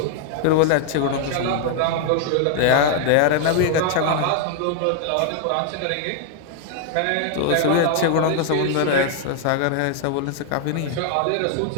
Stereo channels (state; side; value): different; both; correlation 0.00